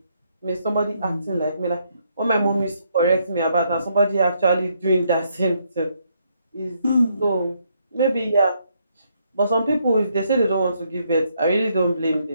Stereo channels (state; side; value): inverted; both; correlation -0.74